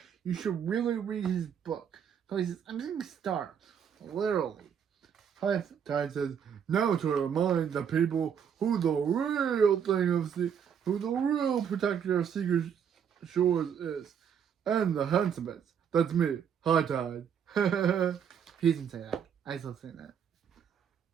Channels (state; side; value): quieter; left; 7.9 dB